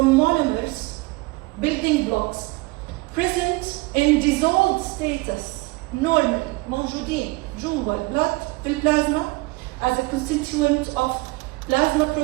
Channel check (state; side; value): quieter; left; 23.5 dB